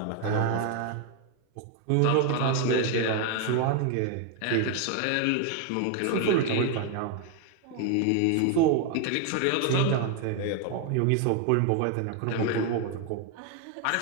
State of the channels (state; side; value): different; both; correlation 0.01